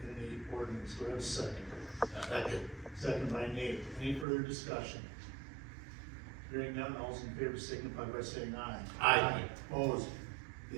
in the ordinance. Do I have a second? Second. Second by Nate. Any further discussion? Hearing none, all those in favor signify by saying aye. Aye. Opposed?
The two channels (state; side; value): drops out; left; at 4.2 s